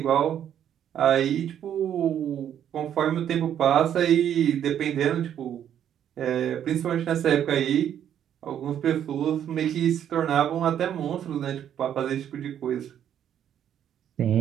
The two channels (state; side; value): quieter; left; 9.8 dB